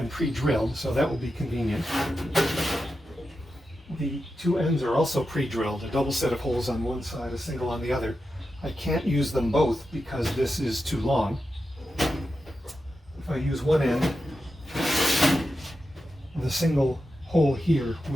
pre-drilled, so that will be convenient. The two ends are also pre-drilled, a double set of holes on one side, a single on the other. I can't use them both because this is too long. If I use one end, the single hole here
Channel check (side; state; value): both; normal; correlation 0.90